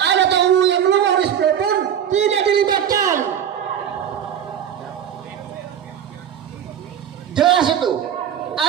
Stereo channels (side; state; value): left; quieter; 9.2 dB